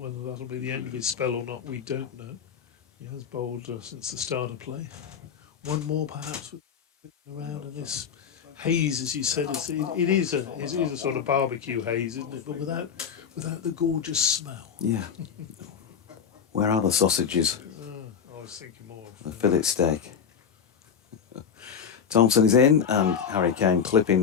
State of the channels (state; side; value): quieter; right; 7.3 dB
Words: that'll be the end of his spell or not, we don't know. He has bowled since the start of play. One more perhaps around in this haze, as you said. It is a sort of barbecue haze, isn't it? But without the gorgeous smell. Yeah. Where are the sausages? I was thinking more of the fillet steak. Thompson is in, and Harry Kane clipping